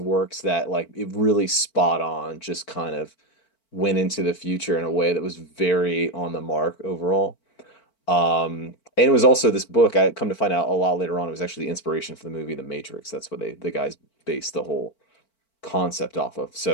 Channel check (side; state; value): right; late; 4.5 ms